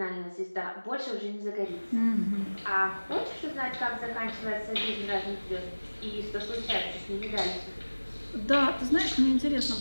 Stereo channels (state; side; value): inverted; both; correlation -1.00